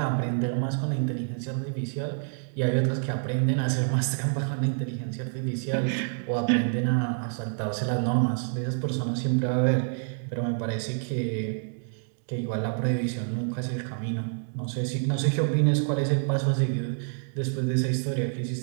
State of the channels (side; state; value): left; silent; digital silence